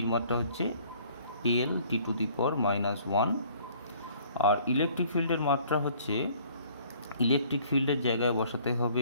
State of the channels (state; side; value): inverted; both; correlation -0.57